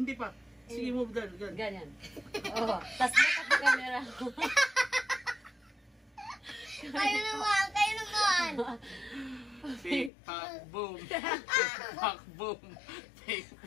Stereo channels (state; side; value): drops out; right; at 10.1 s